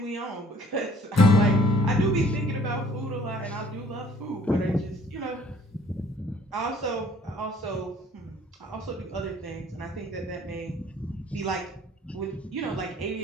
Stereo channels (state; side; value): normal; both; correlation 0.56